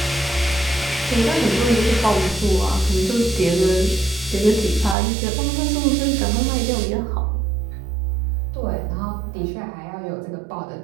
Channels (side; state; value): left; drops out; at 5.0 s